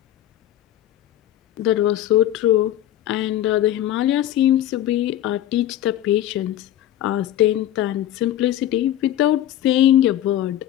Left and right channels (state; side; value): quieter; right; 12.5 dB